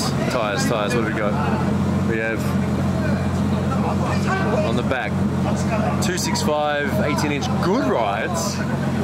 What have we got? We have on the back 265 18-inch good rides.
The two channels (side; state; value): both; identical; correlation 1.00